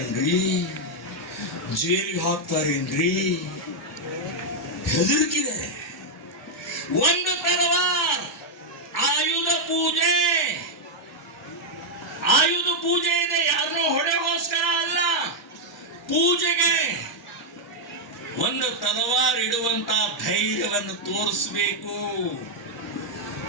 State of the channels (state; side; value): normal; both; correlation -0.01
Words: ಜೈಲಿಗೆ ಹಾಕ್ತಾರೇನ್ರಿ, ಹೆದರಿಕಿದೆ. ಒಂದು ತಲವಾರ್ ಆಯುಧ ಪೂಜೆ ಇದೆ. ಯಾರನ್ನೋ ಹೊಡೆಗೋಸ್ಕರ ಅಲ್ಲ, ಪೂಜೆಗೆ ಒಂದು ತಲವಾರ್ ಇಡುವಂತ ಧೈರ್ಯವನ್ನು ತೋರಿಸಬೇಕು.